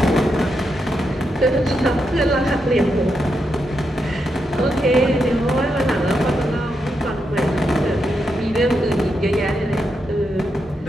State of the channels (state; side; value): normal; both; correlation 0.83